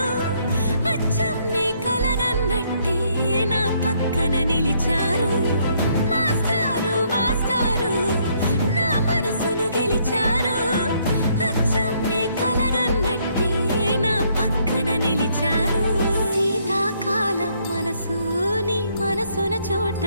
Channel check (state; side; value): inverted; both; correlation -0.69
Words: అచ్చం నీ కలగన్నట్టే నా పక్కన నిలిచారు మాస్టారు మాస్టారు నా మనసును గెలిచారు అచ్చం నీ కలగన్నట్టే నా పక్కన నిలిచారు శీతాకాలం మనసు నీ మనసున